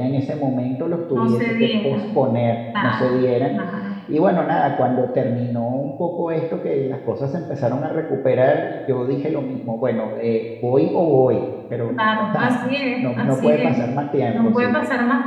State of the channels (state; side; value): identical; both; correlation 1.00